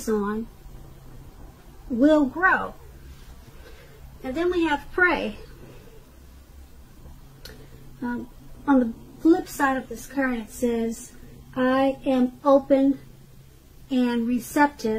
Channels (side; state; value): both; identical; correlation 1.00